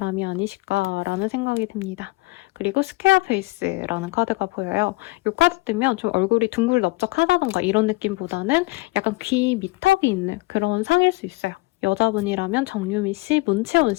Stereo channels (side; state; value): right; quieter; 22.6 dB